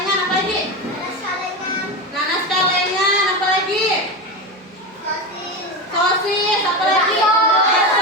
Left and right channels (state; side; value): normal; both; correlation 0.19